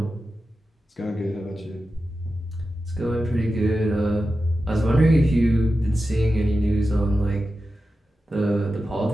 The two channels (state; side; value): normal; both; correlation 0.92